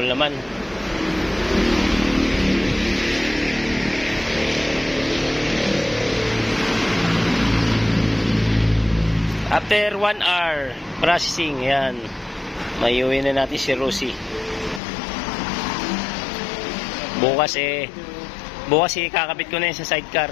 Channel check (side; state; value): right; drops out; at 14.8 s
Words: naman. After 1 hour processing, yan. Mayuwi na natin si Rosie. Bukas kakabit ko na yun sa sidecar.